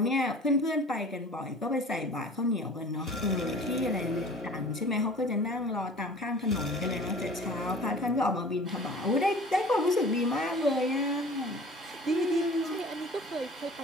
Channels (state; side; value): normal; both; correlation 0.44